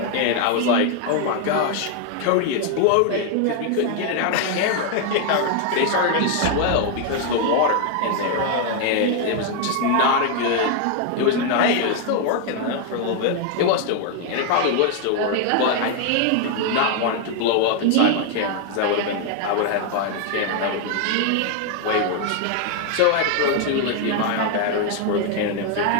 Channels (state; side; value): different; both; correlation 0.00